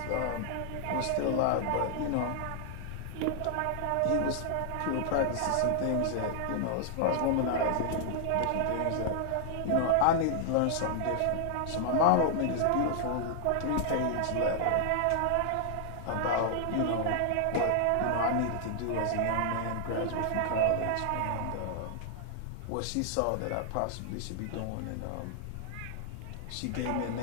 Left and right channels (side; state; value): both; different; correlation 0.00